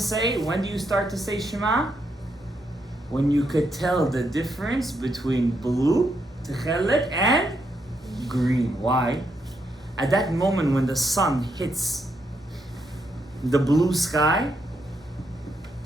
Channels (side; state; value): both; normal; correlation 0.79